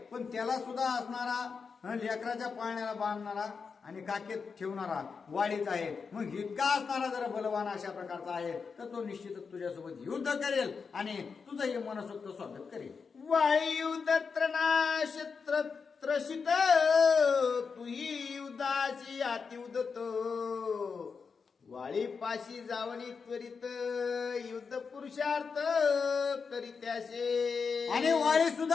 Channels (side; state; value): right; quieter; 5.4 dB